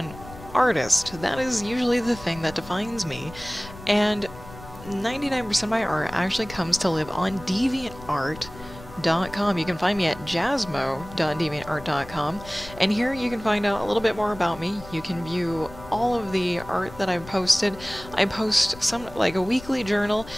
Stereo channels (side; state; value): left; noise; rumble, 17 dB below the sound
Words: artist. That is usually the thing that defines me, and 99% of my art actually comes to live on DeviantArt.com. You can find me at jasmo.deviantart.com, and here you can find out a little bit more about me. You can view all of the art that I've posted. I post some like a weekly journal,